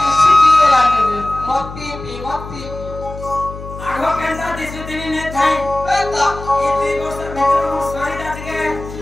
सिटी वाला ने मत पी आगो केंदा दिसु दिनी ने थाई ए तो ई दुई वर्ष भीतर मो सॉरी दात के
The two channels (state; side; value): noise; left; hum, 12 dB below the sound